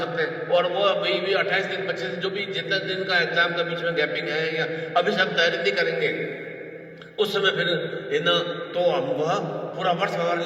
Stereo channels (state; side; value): identical; both; correlation 1.00